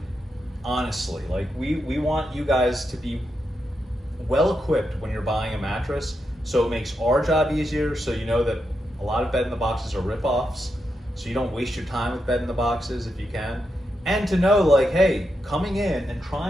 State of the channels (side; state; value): both; normal; correlation 0.85